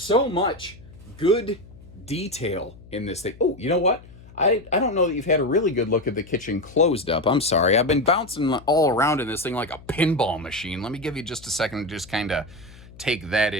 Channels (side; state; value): left; noise; hum, 21 dB below the sound